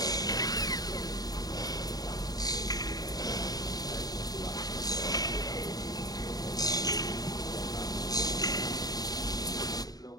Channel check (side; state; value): right; late; 0.18 ms